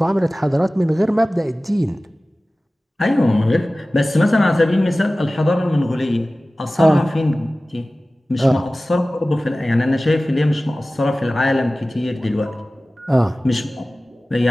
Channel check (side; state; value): both; normal; correlation 0.97